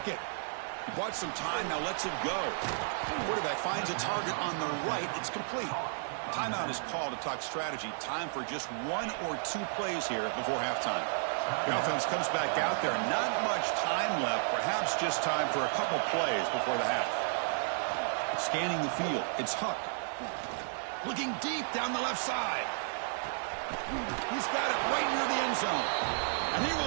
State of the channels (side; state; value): left; silent; digital silence